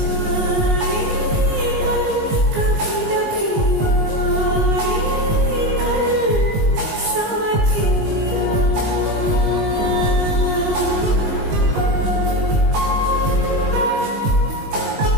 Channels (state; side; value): late; left; 19 ms